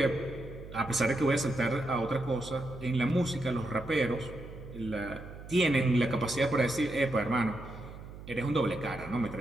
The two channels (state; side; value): noise; right; hum, 14 dB below the sound